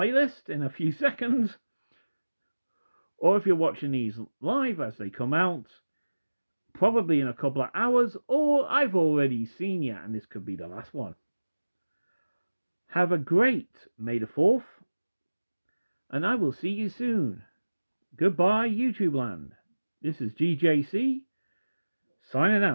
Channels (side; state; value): both; inverted; correlation -1.00